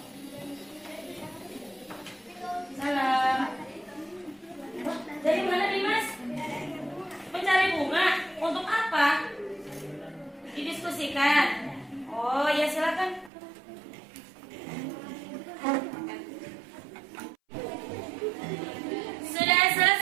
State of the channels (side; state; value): left; drops out; at 13.3 s